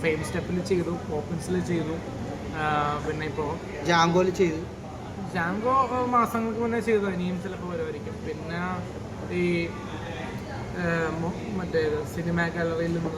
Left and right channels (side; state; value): both; identical; correlation 1.00